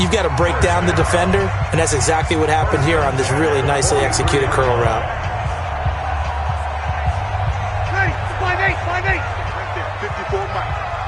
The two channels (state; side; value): identical; both; correlation 1.00